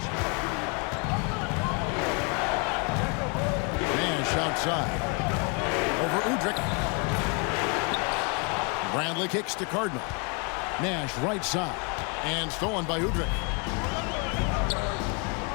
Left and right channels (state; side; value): quieter; right; 34.5 dB